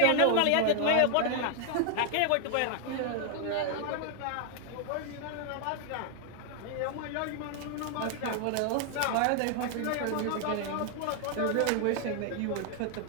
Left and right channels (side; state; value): both; different; correlation 0.00